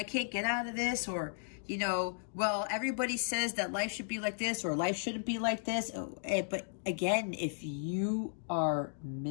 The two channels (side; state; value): right; silent; digital silence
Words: can't get out of this, or, you know, well, everybody says that life should be like this, or life shouldn't be like this. But again, if you are